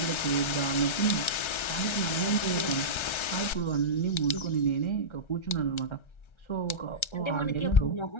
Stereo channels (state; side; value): late; right; 1.3 ms